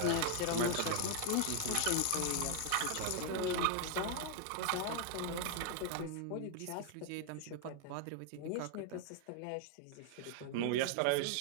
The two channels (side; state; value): both; different; correlation 0.00